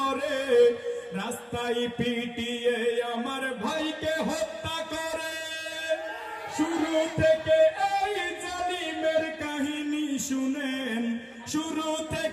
রাস্তায় পিটিয়ে আমার ভাইকে হত্যা করে। শুরু থেকে এই জালিমের কাহিনী শুনেন, শুরু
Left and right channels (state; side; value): identical; both; correlation 1.00